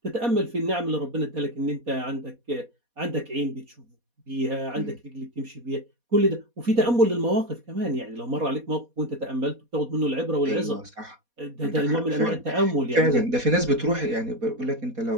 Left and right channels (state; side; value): late; left; 4.2 ms